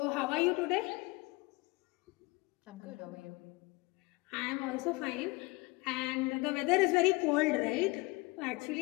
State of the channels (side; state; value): right; quieter; 24.2 dB